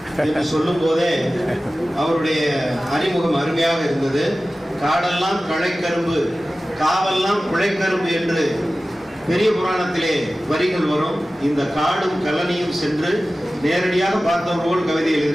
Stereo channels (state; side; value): normal; both; correlation 0.96